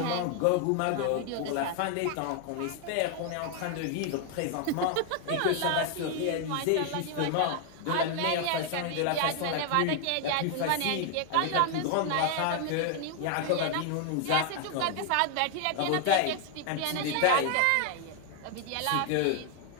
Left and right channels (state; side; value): different; both; correlation 0.00